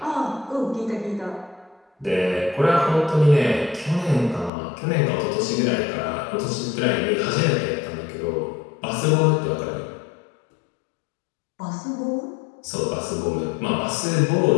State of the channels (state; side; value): drops out; right; at 4.5 s